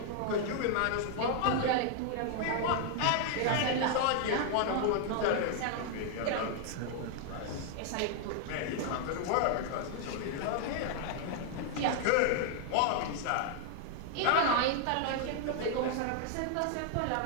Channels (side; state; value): both; different; correlation 0.00